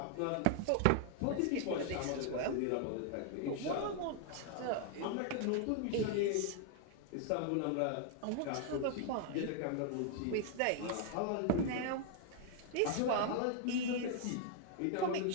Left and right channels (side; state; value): both; different; correlation 0.00